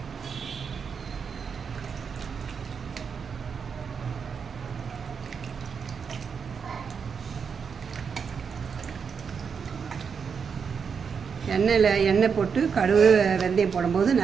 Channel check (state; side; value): quieter; left; 6.3 dB